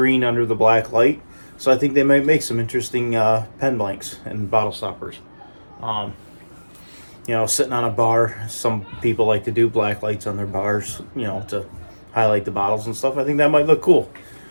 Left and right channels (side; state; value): both; inverted; correlation -1.00